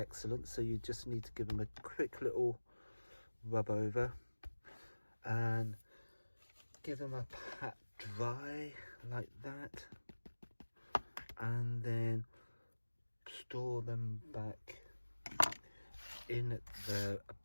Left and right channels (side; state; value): both; inverted; correlation -1.00